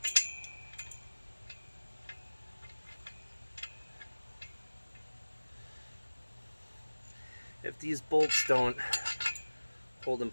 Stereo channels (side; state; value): both; inverted; correlation -1.00